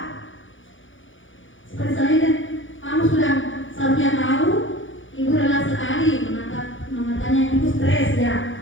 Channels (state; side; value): late; right; 0.56 ms